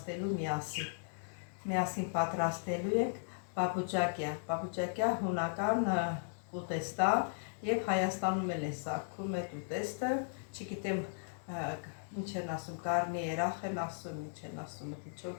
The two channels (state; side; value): silent; right; digital silence